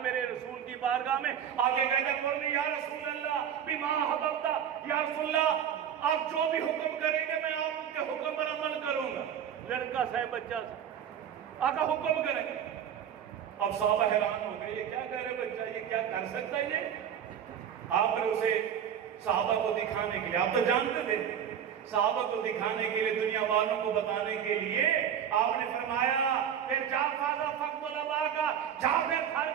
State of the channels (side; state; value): left; quieter; 8.9 dB